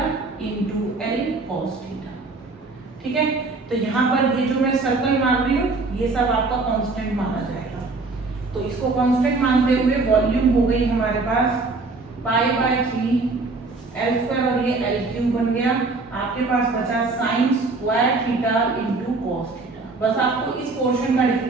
into L cos theta, ठीक है। तो यहाँ पर ये जो मैं सर्कल मान रही हूँ ये सब आपका कांस्टेंट माना जाएगा। तो इसको कांस्टेंट मानते हुए वॉल्यूम हो गई हमारे पास π/3 L स्क्वायर, और ये L क्यूब बन गया। आपके पास बचा sine square theta into cos theta. बस आपको इस पोर्शन का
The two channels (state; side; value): quieter; left; 3.6 dB